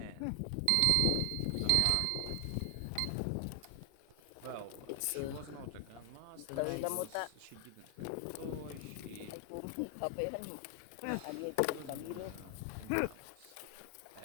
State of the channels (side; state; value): both; different; correlation 0.00